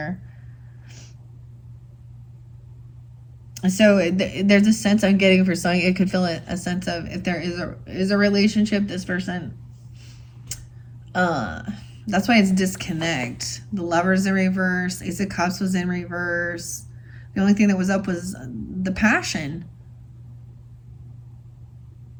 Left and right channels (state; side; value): identical; both; correlation 1.00